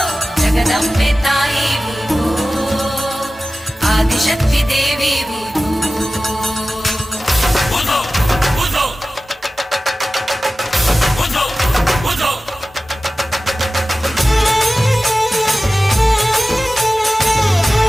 ಜಗದಂಬೆ ತಾಯಿ ಉಧೋ ಆದಿಶಕ್ತಿ ದೇವಿ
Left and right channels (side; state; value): both; normal; correlation 0.96